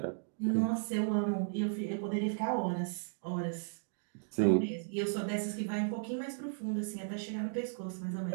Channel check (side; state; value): left; silent; digital silence